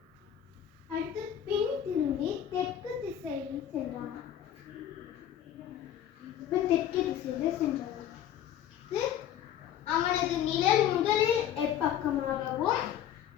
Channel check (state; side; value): quieter; right; 10.4 dB